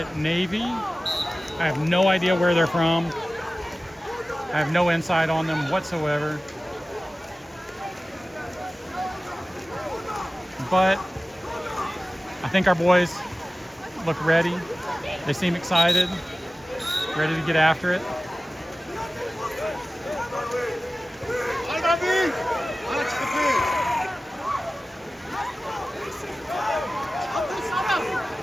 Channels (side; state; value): both; normal; correlation 0.96